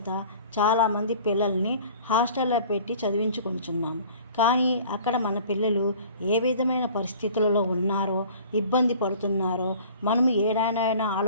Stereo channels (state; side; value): inverted; both; correlation -0.47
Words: చాలామంది పిల్లల్ని హాస్టల్లో పెట్టి చదివించుకుంటున్నాము. కానీ అక్కడ మన పిల్లలు ఏ విధమైన పరిస్థితులలో ఉన్నారో, ఇబ్బంది పడుతున్నారో మనము ఏడానైనా